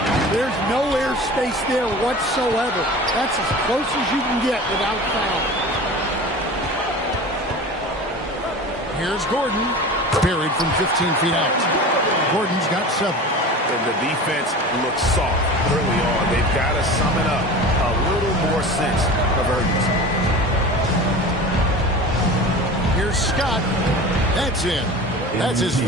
There's no air space there whatsoever. That's as close as you can get without foul. Here's Gordon. Buried from 15 feet out. Gordon's got 7. And the defense looks soft early on. They've got to summon up a little more sense of urgency. Here's Scott. That's in. That's his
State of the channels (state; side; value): normal; both; correlation 0.35